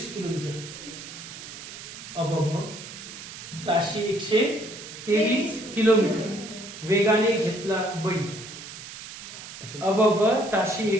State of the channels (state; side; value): noise; right; hiss, 12 dB below the sound